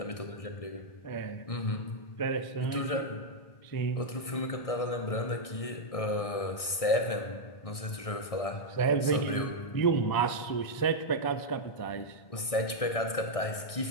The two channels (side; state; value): right; late; 1.6 ms